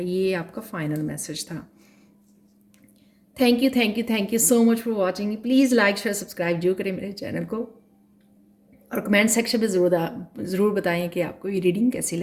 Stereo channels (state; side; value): identical; both; correlation 1.00